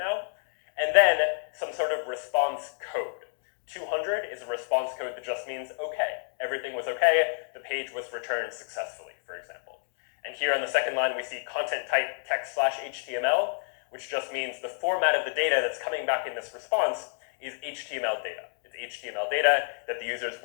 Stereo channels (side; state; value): right; silent; 58 dB below the other